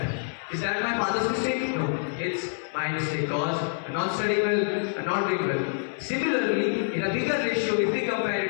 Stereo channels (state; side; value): silent; right; digital silence